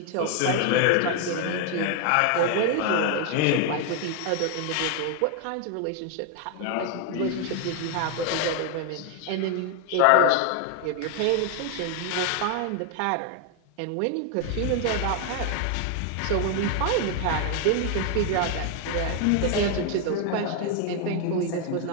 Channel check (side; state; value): both; different; correlation 0.00